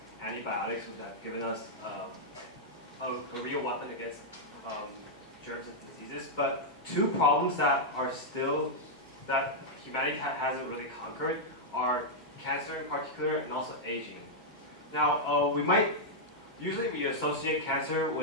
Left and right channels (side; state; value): both; normal; correlation -0.05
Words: antibiotics, which have given us a real weapon against germs and diseases. But two problems that are still that humanity hasn't really conquered are cancer in particular and also aging. Now, usually we associate cancer